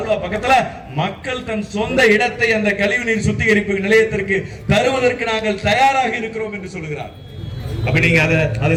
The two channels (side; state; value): both; identical; correlation 1.00